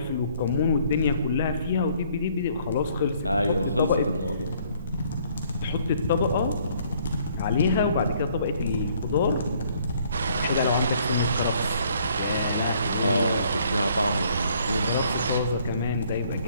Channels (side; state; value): both; inverted; correlation -0.63